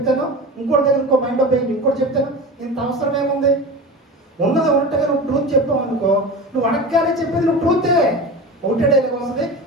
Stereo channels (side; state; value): both; normal; correlation 0.30